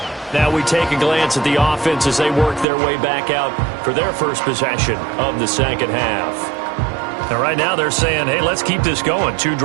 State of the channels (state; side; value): drops out; left; at 2.7 s